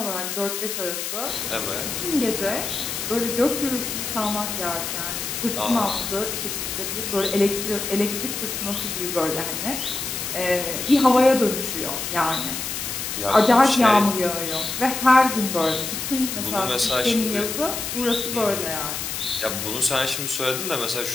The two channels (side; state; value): left; noise; hiss, 4 dB below the sound